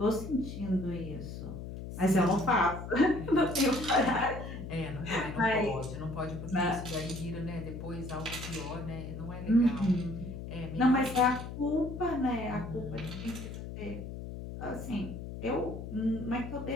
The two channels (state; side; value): noise; left; hum, 9 dB below the sound